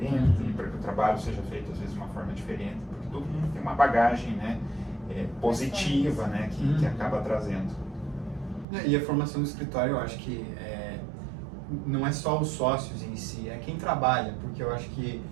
para que o trabalho seja feito às vezes de uma forma diferente, porque todo mundo tem uma bagagem, né, positiva, né, que acaba trazendo. E a formação do escritório, eu acho que não é só os sócios em si, é quem trabalha, porque eu acho que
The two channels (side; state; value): left; drops out; at 8.7 s